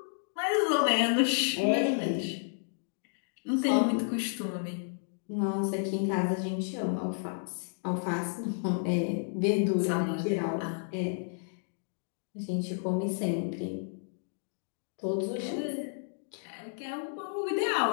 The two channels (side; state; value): right; silent; digital silence